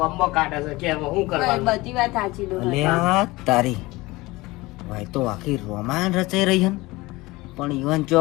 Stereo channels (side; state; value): right; quieter; 21.1 dB